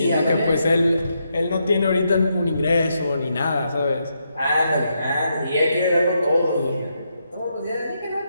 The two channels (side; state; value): both; inverted; correlation -0.81